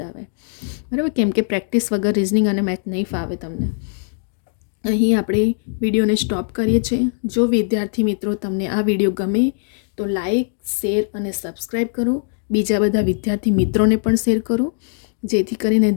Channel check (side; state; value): right; silent; digital silence